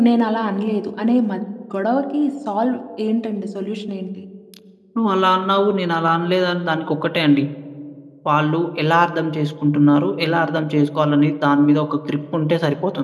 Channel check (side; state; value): both; identical; correlation 1.00